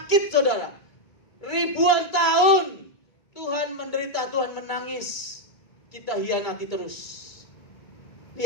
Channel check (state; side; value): late; right; 2.3 ms